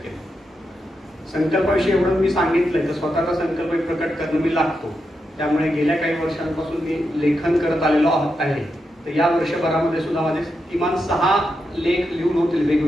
संकल्पाविषयी एवढं मी सांगितलंय तर स्वतःचा संकल्प प्रकट करणं मी लागतो. त्यामुळे गेल्या काही वर्षांपासून मी लेखन करत आलेलो आहे. तर या वर्षभरामध्ये सुद्धा माझे किमान 6 लेख लिहून होतील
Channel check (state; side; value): normal; both; correlation 0.86